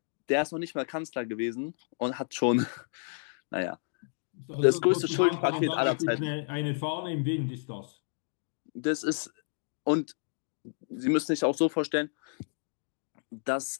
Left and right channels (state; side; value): silent; right; digital silence